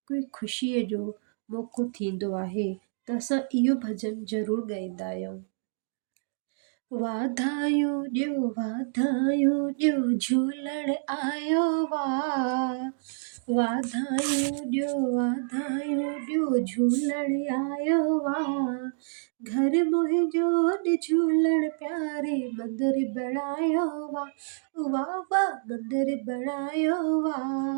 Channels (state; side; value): silent; left; digital silence